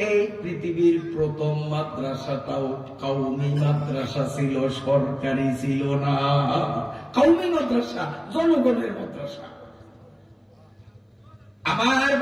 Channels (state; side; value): identical; both; correlation 1.00